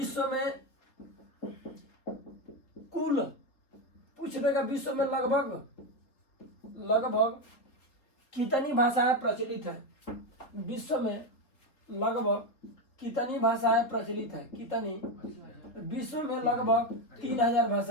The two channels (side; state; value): right; late; 3.7 ms